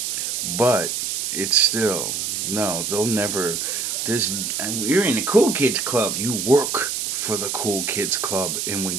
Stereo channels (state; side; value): noise; right; hiss, 2 dB below the sound